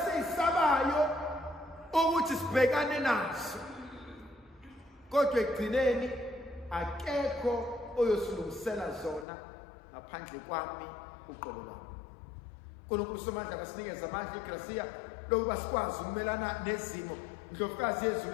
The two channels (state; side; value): drops out; right; at 9.2 s